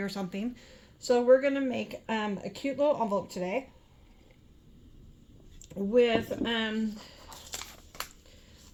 something. So we're gonna make a cute little envelope today with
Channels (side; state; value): both; identical; correlation 1.00